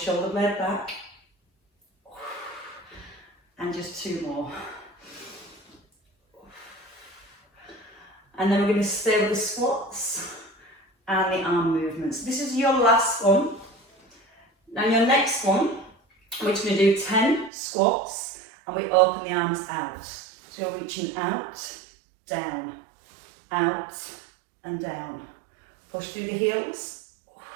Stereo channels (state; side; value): drops out; left; at 17.5 s